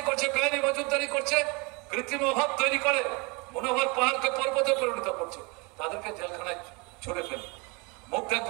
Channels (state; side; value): quieter; left; 28.4 dB